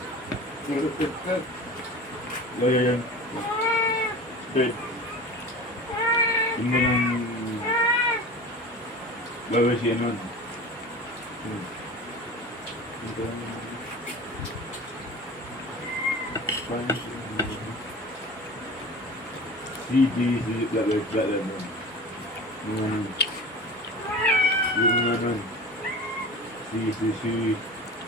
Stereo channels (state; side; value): normal; both; correlation 0.35